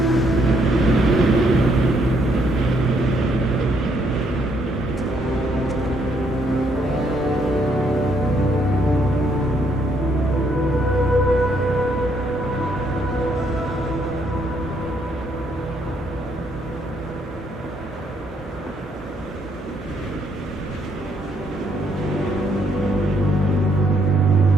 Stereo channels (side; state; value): both; normal; correlation 0.71